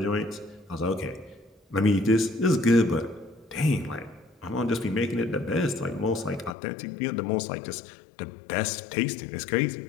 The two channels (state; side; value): drops out; right; at 6.6 s